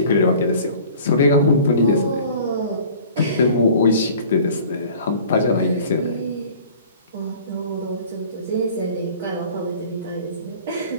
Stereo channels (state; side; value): inverted; both; correlation -0.46